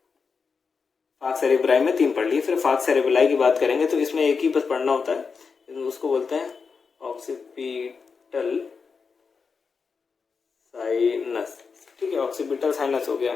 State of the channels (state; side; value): quieter; right; 5.3 dB